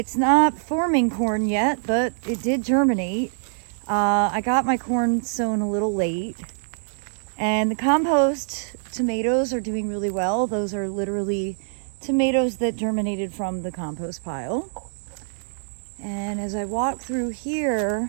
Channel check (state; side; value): silent; left; digital silence